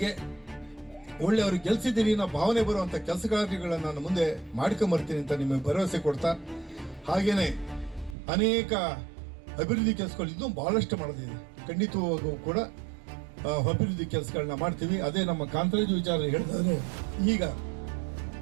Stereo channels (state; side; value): drops out; left; at 8.2 s